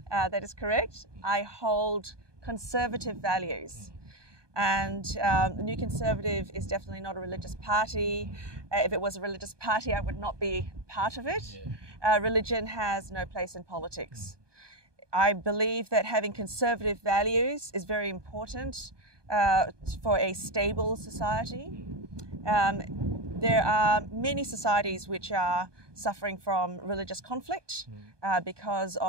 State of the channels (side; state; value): left; late; 1.2 ms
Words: That is correct. I hold conservative values. And the New Conservative is definitely not a religious party. If it was a religious party, I would not be part of it. Religion has no place in politics. I believe that having conservative values is very important for a stable society. there are many societies which are suffering from religious conflict because